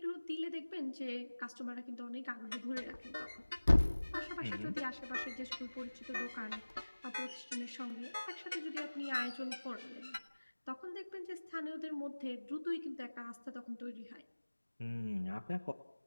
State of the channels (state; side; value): inverted; both; correlation -1.00